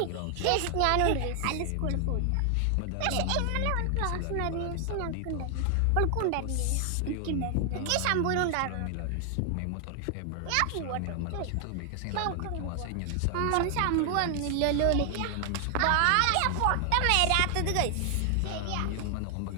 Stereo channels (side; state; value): both; different; correlation 0.00